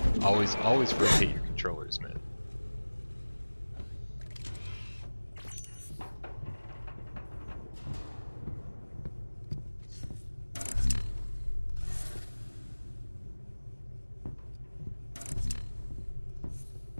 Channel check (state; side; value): inverted; both; correlation -1.00